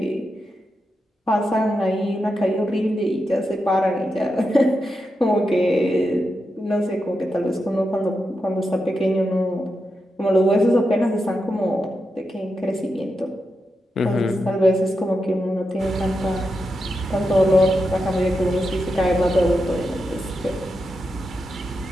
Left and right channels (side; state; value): both; normal; correlation 0.87